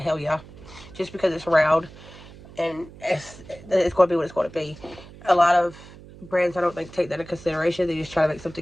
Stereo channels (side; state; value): right; noise; hum, 19 dB below the sound